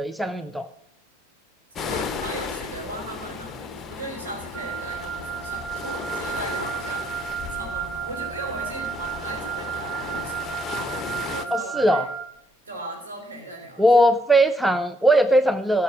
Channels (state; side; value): normal; both; correlation 0.72